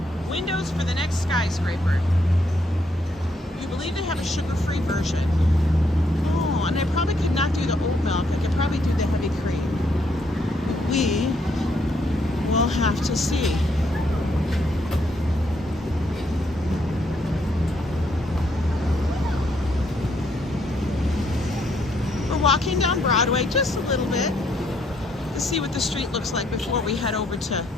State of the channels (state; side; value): normal; both; correlation 0.73